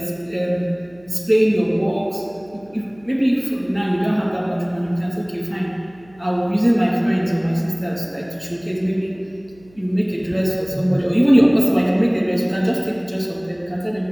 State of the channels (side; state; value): right; noise; hum, 27 dB below the sound